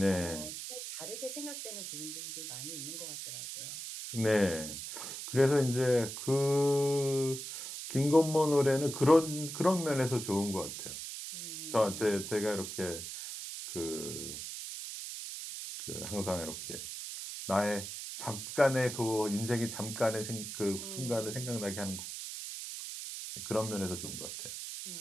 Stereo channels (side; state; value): right; noise; hiss, 7 dB below the sound